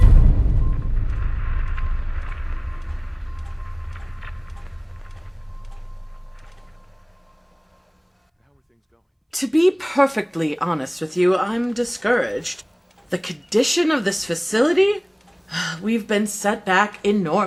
To be perfectly honest with you, I'm discouraged. The condition of this facility? We've been set back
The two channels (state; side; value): identical; both; correlation 1.00